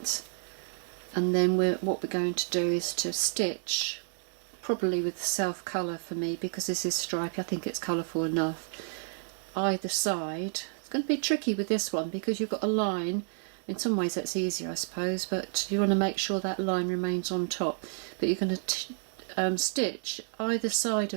and then what we're going to do is to stitch, probably with self colour for me because this is stripy, I think it's colourful enough, either side. It's going to be tricky with this one because you've got a line. In some ways that's easier, I suppose, but you want to make sure that line remains on top. But you're going to stitch either side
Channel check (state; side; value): silent; left; digital silence